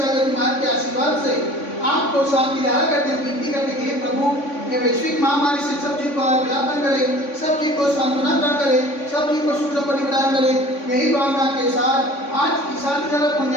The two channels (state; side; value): late; right; 3.5 ms